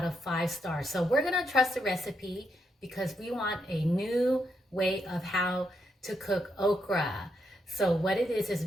of 5 stars. So we're gonna trust the recipe because we want a new way of how to cook okra. So what it is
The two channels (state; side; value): normal; both; correlation 0.80